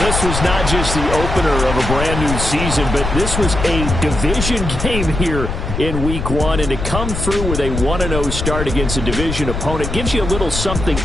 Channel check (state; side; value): noise; left; rumble, 4 dB below the sound